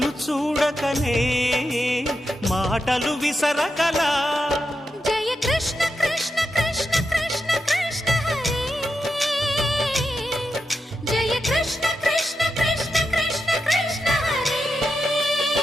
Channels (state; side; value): normal; both; correlation 0.87